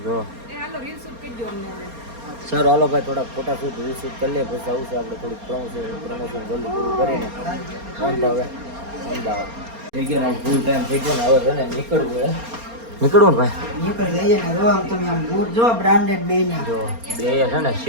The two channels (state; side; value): late; left; 4.3 ms